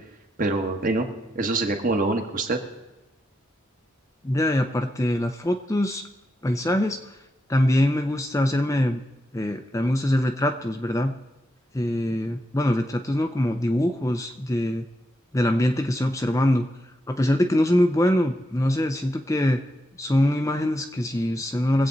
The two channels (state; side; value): normal; both; correlation 0.84